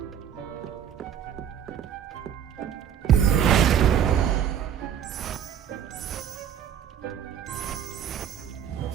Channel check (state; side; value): quieter; left; 9.0 dB